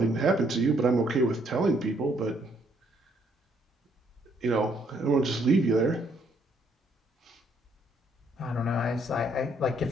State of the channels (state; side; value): normal; both; correlation 0.69